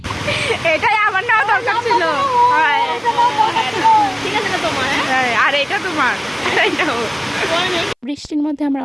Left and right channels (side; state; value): both; identical; correlation 1.00